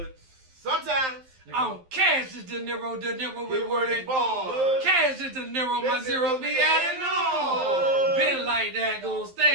Sometimes. I'm Cash is De Niro with word and ball. Cash is De Niro, my zero be adding on. Been like that, gonna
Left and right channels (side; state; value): left; late; 11 ms